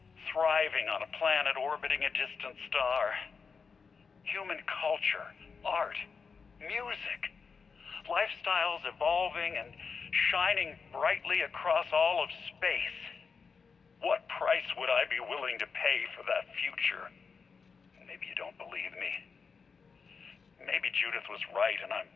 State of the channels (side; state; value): right; quieter; 5.4 dB